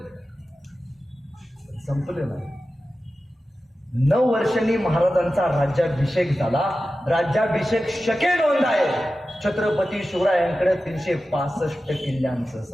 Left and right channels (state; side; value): normal; both; correlation 0.94